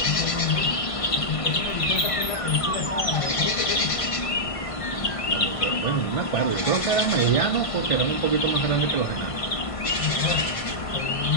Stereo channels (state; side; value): late; right; 1.5 ms